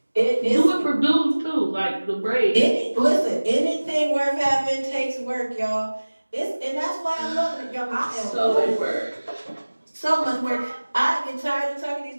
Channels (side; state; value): both; inverted; correlation -1.00